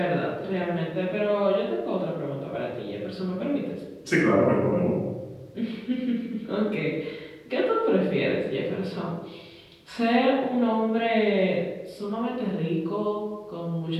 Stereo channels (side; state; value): both; identical; correlation 1.00